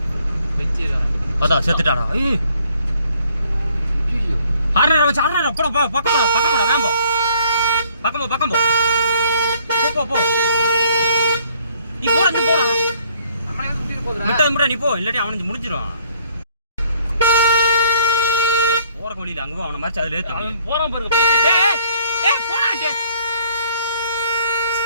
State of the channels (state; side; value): inverted; both; correlation -0.62